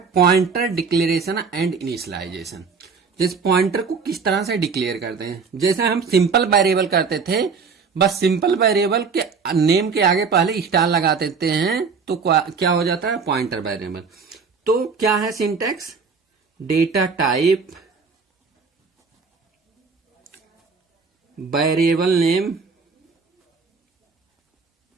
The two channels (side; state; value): left; quieter; 5.3 dB